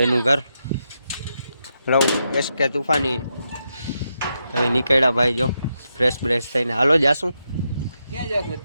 એનું ઘર. હેલો એસકે તુફાની, હવે નીકળ્યા ભાઈ, જો ફ્રેશ બ્રેશ થઈને. હાલો જાશું, ક્યાં જાશું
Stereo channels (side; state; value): both; inverted; correlation -0.84